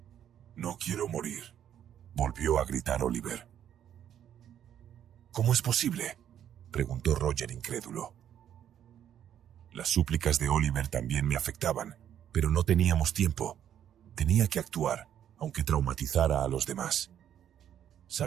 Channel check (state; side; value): quieter; left; 10.0 dB